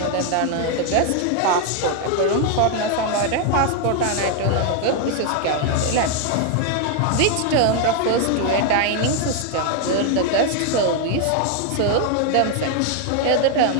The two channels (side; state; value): both; different; correlation 0.00